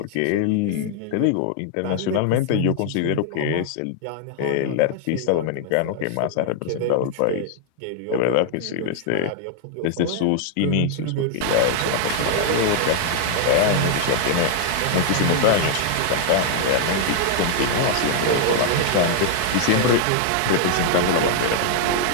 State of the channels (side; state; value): both; different; correlation 0.00